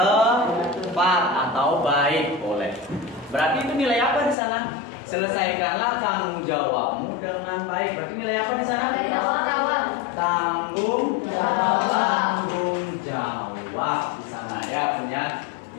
tepat atau baik, boleh. Berarti itu nilai apa di sana? Selesaikanlah tanggung jawabmu dengan baik. Berarti nilai apa di sana? Tanggung jawab di sana ya, punya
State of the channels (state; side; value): drops out; right; at 4.4 s